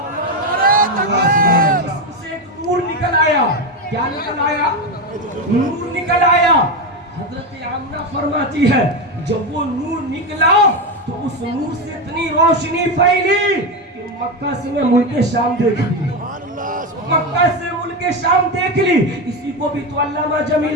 जिस्म से एक नूर निकल आया। क्या निकल आया? नूर निकल आया। हजरत आमना फरमाती है जब वो नूर निकला तो उस नूर से इतनी रोशनी फैली कि मक्का से मैं मुल्क शाम देख ली, मक्का से मुल्क शाम देख ली। इसी को भी तो अल्लामा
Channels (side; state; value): both; normal; correlation 0.13